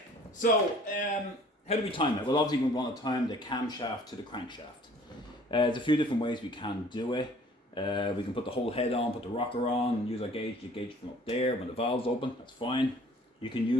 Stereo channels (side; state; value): both; normal; correlation 0.53